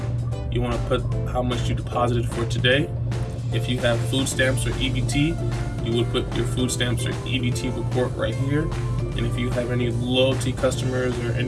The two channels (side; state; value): both; identical; correlation 1.00